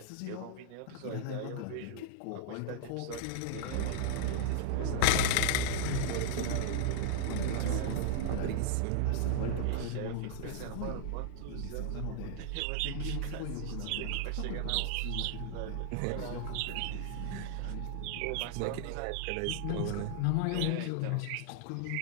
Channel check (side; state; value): both; different; correlation -0.01